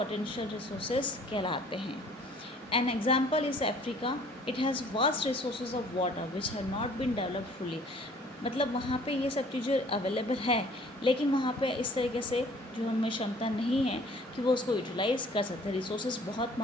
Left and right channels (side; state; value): both; normal; correlation 0.54